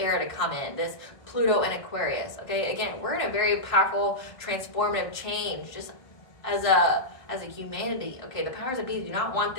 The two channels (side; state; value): right; late; 1.5 ms